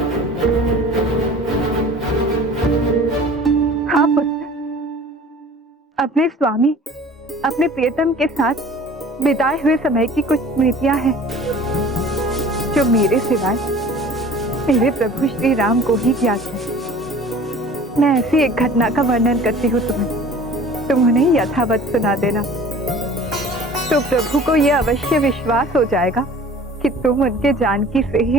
हाँ पुत्र, अपने स्वामी, अपने प्रियतम के साथ बिताए हुए समय की कुछ स्मृतियां हैं जो मेरे सिवाय मेरे प्रभु श्री राम को ही ज्ञात है। मैं ऐसी एक घटना का वर्णन करती हूँ तुम्हें, तुम उन्हें यथावत सुना देना, तो प्रभु को यह अवश्य विश्वास हो जाएगा कि तुम उनके जानकी से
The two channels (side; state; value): both; normal; correlation 0.45